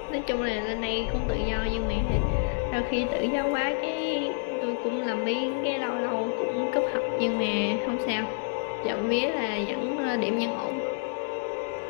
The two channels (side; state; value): right; silent; digital silence